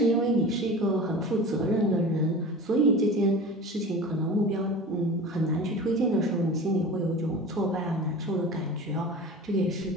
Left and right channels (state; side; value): normal; both; correlation 0.35